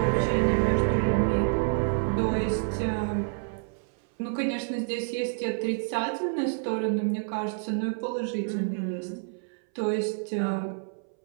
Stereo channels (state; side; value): silent; left; 59 dB below the other